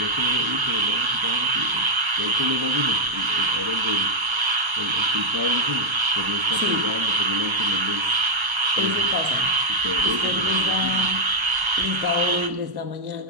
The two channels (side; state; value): left; late; 1.3 ms